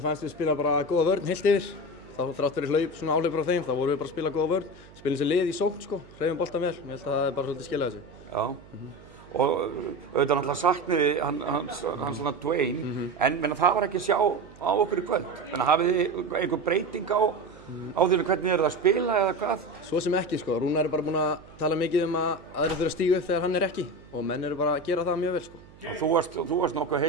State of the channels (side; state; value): right; noise; hum, 23 dB below the sound